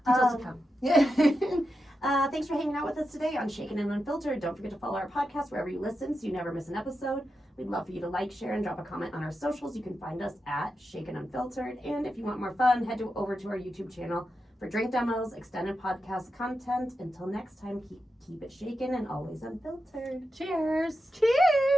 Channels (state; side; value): normal; both; correlation 0.88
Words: Details to come. Yeah. Thanks for hanging out with us today on Shaken and Unfiltered. Don't forget to follow our podcast wherever you listen so you never miss an episode. We'd love for you to like, share, and drop a comment on our socials. You can find us at Shaken Unfiltered. And if you want more fun, head over to our YouTube channel for drink demos, extended podcast content. Until next time, keep it shaken and always unfiltered. Cheers.